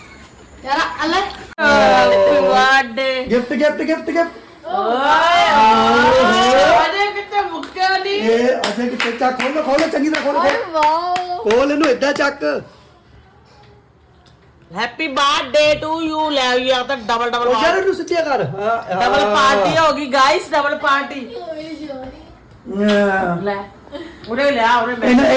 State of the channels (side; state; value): both; identical; correlation 1.00